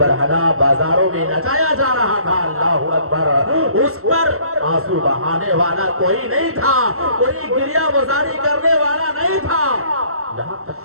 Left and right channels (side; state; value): left; late; 0.63 ms